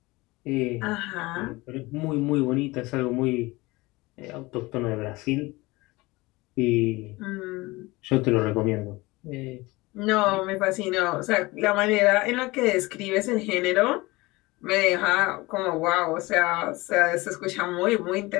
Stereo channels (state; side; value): quieter; right; 21.9 dB